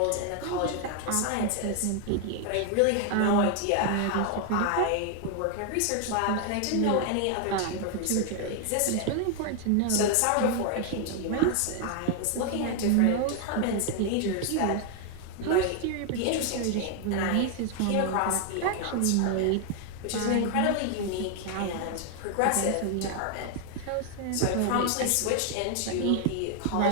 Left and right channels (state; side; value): different; both; correlation 0.00